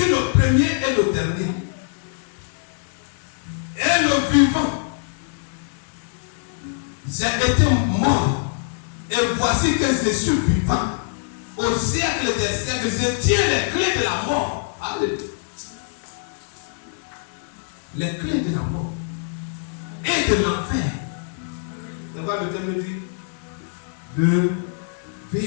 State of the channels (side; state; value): right; silent; 63 dB below the other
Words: le premier et le dernier. Et le vivant. J'ai été mort. Et voici que je suis vivant. Au siècle des siècles, je tiens les clés de la mort. Alléluia. Les clés de la mort. Et de l'enfer. On va le thème dire de